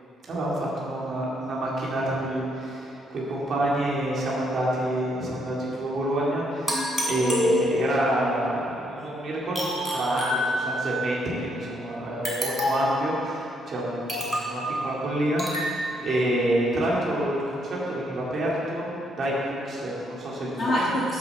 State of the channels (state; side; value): normal; both; correlation 0.73